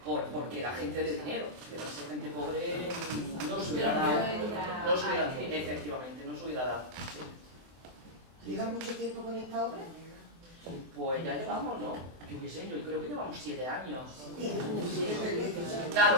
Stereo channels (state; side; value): late; left; 24 ms